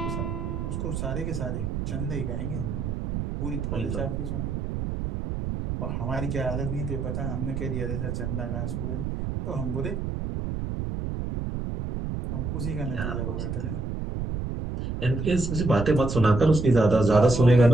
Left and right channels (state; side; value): noise; right; rumble, 3 dB below the sound